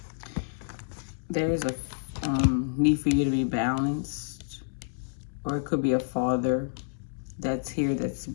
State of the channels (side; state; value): right; silent; 59 dB below the other